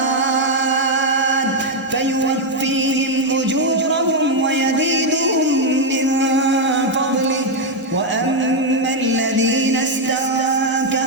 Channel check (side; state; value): both; normal; correlation 0.02